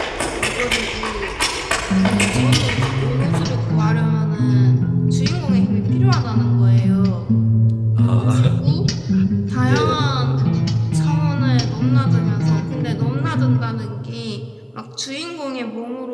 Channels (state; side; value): identical; both; correlation 1.00